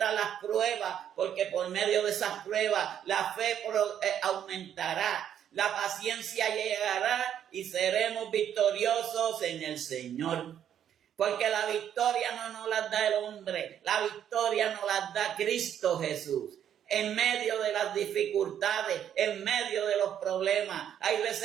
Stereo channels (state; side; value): quieter; left; 9.6 dB